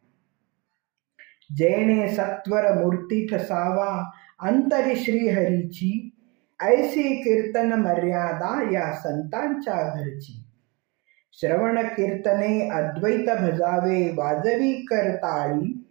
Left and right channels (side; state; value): left; quieter; 28.2 dB